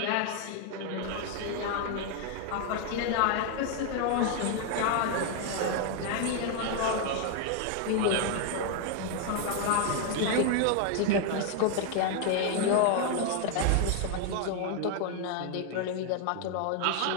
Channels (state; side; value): different; both; correlation 0.00